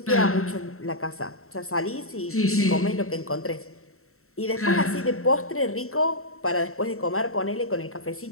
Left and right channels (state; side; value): late; right; 0.63 ms